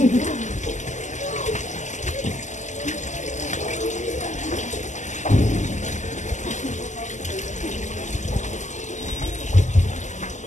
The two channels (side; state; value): right; late; 0.34 ms